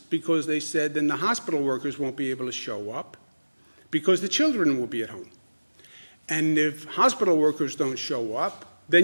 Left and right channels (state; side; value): inverted; both; correlation -1.00